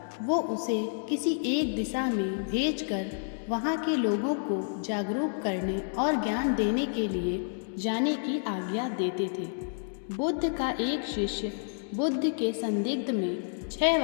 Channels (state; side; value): silent; right; digital silence